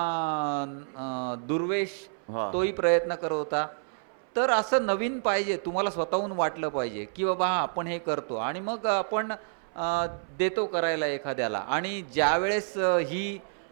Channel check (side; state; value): left; silent; 59 dB below the other